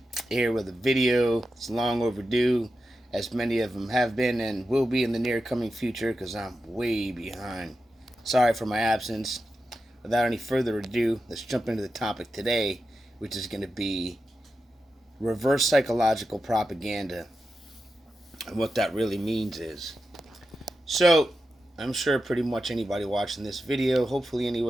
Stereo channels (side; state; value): both; normal; correlation 0.90